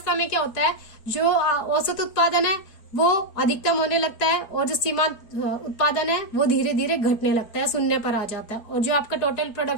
में क्या होता है, जो औसत उत्पादन है वो अधिकतम होने लगता है, और जो सीमांत उत्पादन है वो धीरे धीरे घटने लगता है, शून्य पर आ जाता है, और जो आपका टोटल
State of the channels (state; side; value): late; right; 4.4 ms